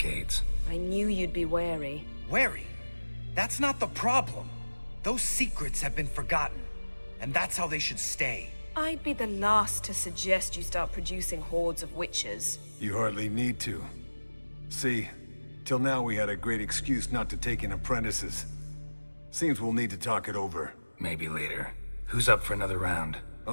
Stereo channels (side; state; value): both; inverted; correlation -1.00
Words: I knew you'd be wary. Wary? That's not the problem. Those secrets have been forgotten, and that's how they should stay. I'd be the last to suggest you start producing hordes of witches. You hardly need to. See, till now we had a great excuse not to take in apprentices. Seems we'll need to talk it over. Maybe later. Who's up for another round?